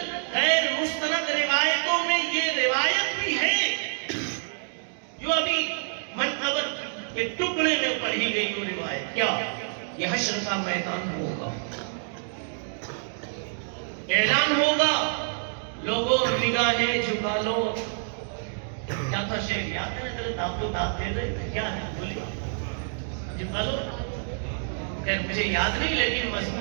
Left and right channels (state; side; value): silent; left; digital silence